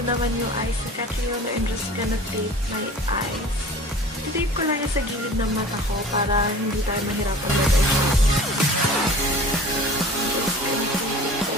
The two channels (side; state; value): both; normal; correlation 0.42